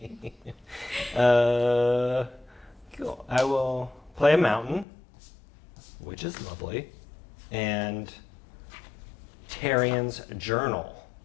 Cool. I will play a mountain, which is lovely, and Tarian's journal,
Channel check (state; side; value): drops out; right; at 4.9 s